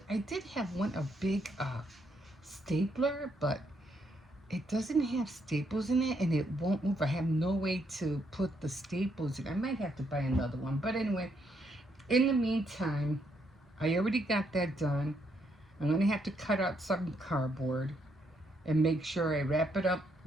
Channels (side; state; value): both; normal; correlation 0.75